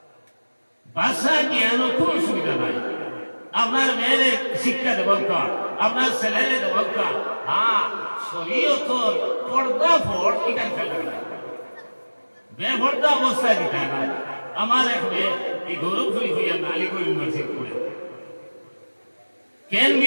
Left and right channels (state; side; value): inverted; both; correlation -1.00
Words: ভাষা জ্ঞানও কোনো সুবিধা নাই আপনার মেয়েরে শিক্ষা দেব আপনার ছেলেরে দেব হ্যাঁ শরীয়তর পর্দা ফোট এখান খেলা বেপর্দা অবস্থায় দিতে না আমার এক মেয়ে এই গৌরবপুরি হইয়া আলিগড় ইউনিভার্সিটি পড়ে কেন বি